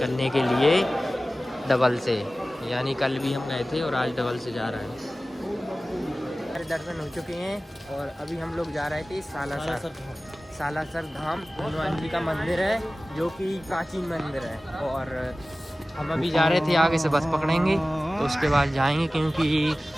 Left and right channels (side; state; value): both; normal; correlation 0.97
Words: के लिए डबल से, यानी कल भी हम गए थे और आज डबल से जा रहे हैं। हमारे दर्शन हो चुके हैं और अभी हम लोग जा रहे थे सालासर धाम हनुमान जी का मंदिर है, जो कि प्राचीन मंदिर है। और हम अभी जा रहे थे, आगे से बस पकड़ेंगे तो उसके बाद जाएंगे क्योंकि